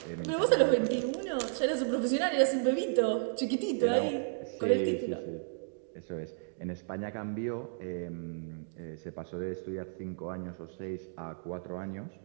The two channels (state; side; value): silent; left; digital silence